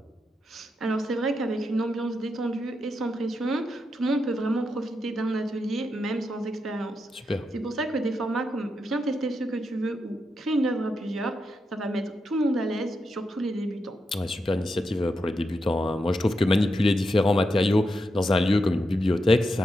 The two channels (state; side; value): normal; both; correlation 0.85